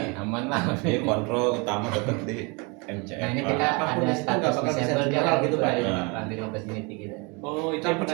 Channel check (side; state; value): left; quieter; 30.1 dB